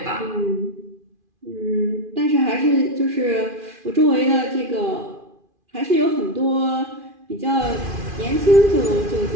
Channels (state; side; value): late; left; 2.5 ms